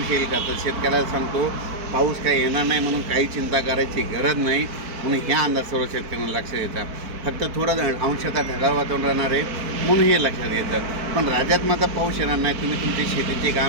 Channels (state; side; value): late; left; 4.5 ms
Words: येईल का. तर शेतकऱ्याला सांगतो पाऊस काही येणार नाही, म्हणून काही चिंता करायची गरज नाही, म्हणून ह्या अंदाज सर्व शेतकऱ्यांना लक्षात येतात. फक्त थोडं अंशतः ढगाळ वातावरण राहणार आहे, म्हणून हे लक्षात येतं. पण राज्यात मात्र पाऊस येणार नाही. तुम्ही तुमची शेतीची